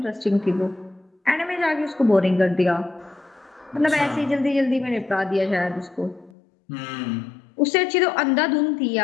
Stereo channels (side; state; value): right; drops out; at 6.3 s